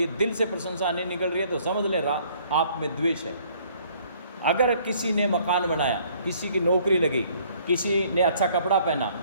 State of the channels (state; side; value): inverted; both; correlation -0.60